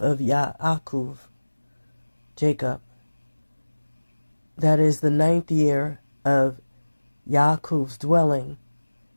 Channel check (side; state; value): both; inverted; correlation -1.00